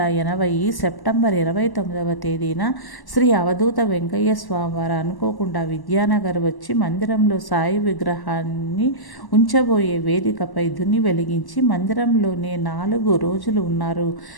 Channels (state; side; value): late; right; 1.1 ms